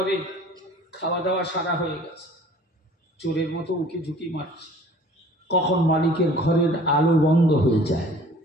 খাওয়া দাওয়া সারা হয়ে গেছে, চোরের মতো উকি ঝুঁকি মারছে। কখন মালিকের ঘরের আলো বন্ধ হয়ে যায়,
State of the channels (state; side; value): normal; both; correlation 0.50